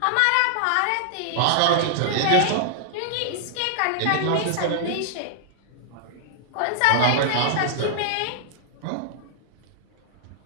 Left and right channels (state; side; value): different; both; correlation -0.01